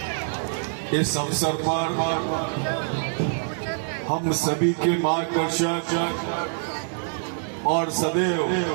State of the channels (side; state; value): left; silent; digital silence